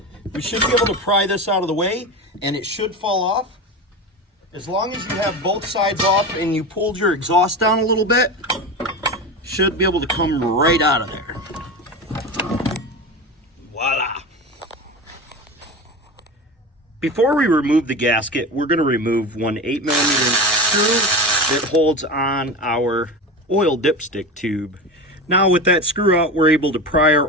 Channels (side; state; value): both; normal; correlation 0.25